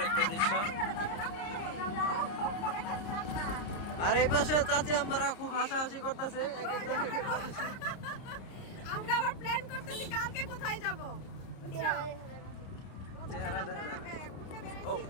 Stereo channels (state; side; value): late; right; 30 ms